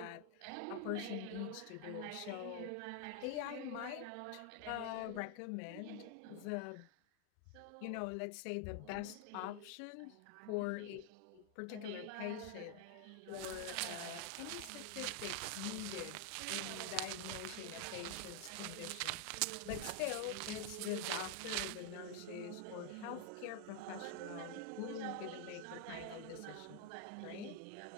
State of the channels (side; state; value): both; different; correlation 0.00